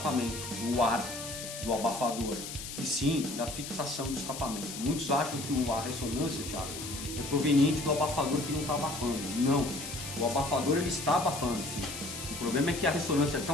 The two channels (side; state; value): left; noise; hiss, 9 dB below the sound